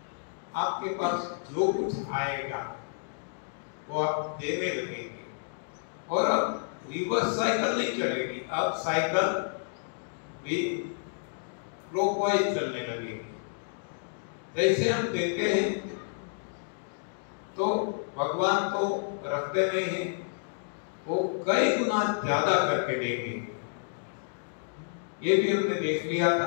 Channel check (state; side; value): silent; right; digital silence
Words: आपके पास जो कुछ आएगा वो आप देने लगेंगे, और अब रिवर्स साइकिल नहीं चलेगी, अब साइकिल भी क्लॉकवाइज चलने लगेगी। जैसे हम देते हैं तो भगवान तो रखते नहीं हैं, वो कई गुना ज्यादा करके देंगे। ये भी हमने देख लिया